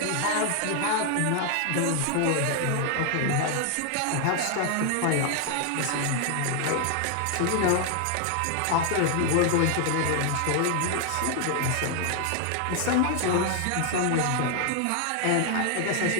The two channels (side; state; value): both; different; correlation 0.00